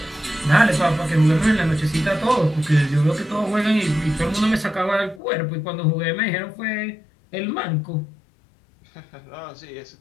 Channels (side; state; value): right; drops out; at 5.2 s